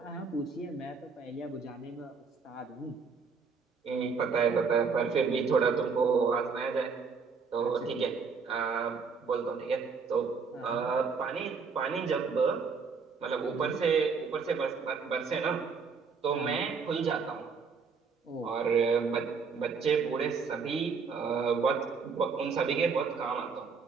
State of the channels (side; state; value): left; quieter; 5.3 dB